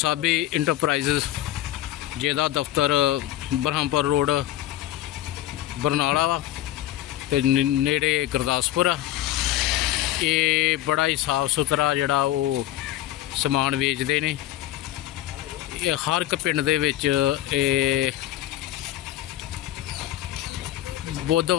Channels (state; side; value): quieter; right; 13.8 dB